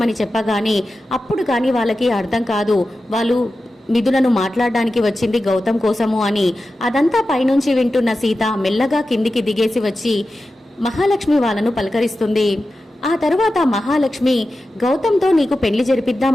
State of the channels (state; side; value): normal; both; correlation 0.93